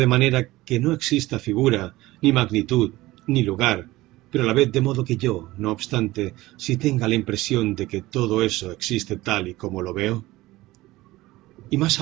manera que no exista figura, ni magnitud, ni lugar, pero a la vez de modo que yo, no obstante, si tenga la impresión de que todo eso existe tal y como lo veo? Y más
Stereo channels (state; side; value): quieter; left; 18.4 dB